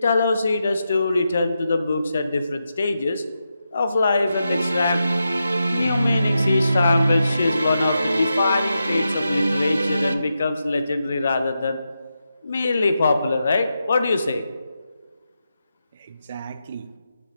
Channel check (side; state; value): both; inverted; correlation -0.87